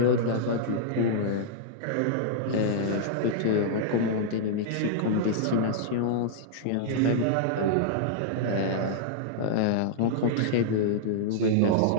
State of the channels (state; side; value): different; both; correlation -0.02